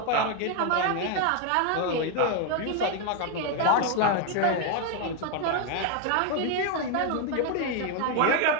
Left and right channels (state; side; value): different; both; correlation 0.01